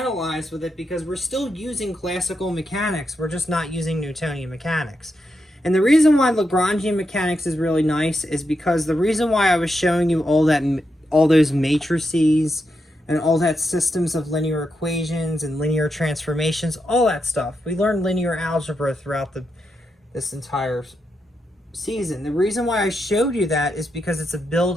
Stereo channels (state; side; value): normal; both; correlation 0.84